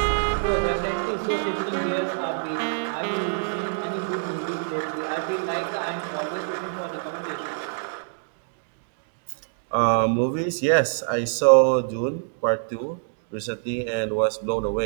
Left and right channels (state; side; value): silent; left; digital silence